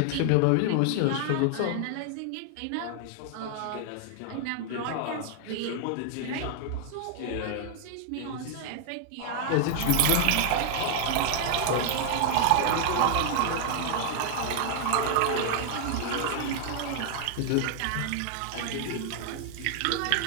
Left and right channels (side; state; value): both; different; correlation 0.00